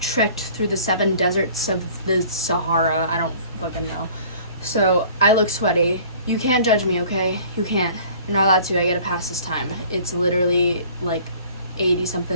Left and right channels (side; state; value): both; inverted; correlation -0.50